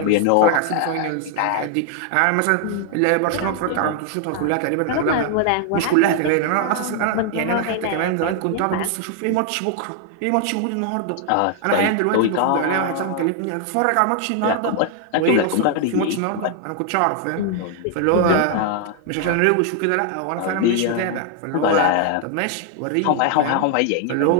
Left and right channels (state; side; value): different; both; correlation 0.00